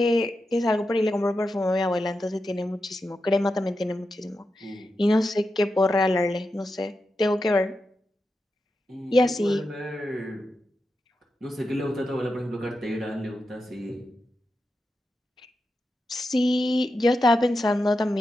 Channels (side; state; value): both; normal; correlation 0.89